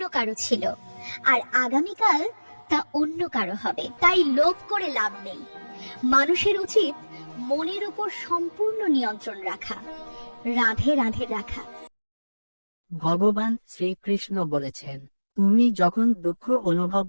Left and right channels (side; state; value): both; inverted; correlation -1.00